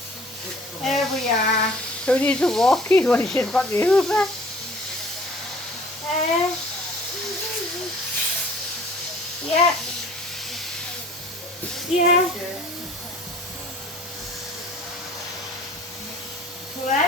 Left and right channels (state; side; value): normal; both; correlation 0.50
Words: There we are. Who needs a walkie when she's got the Hoover? Uh, yeah. Yeah.